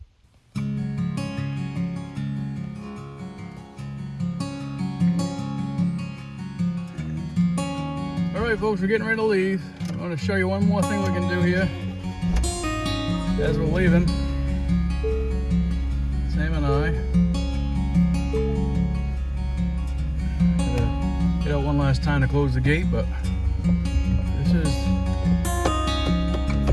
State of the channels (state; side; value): identical; both; correlation 1.00